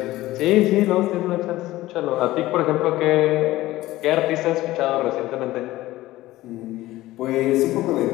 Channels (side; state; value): right; quieter; 16.8 dB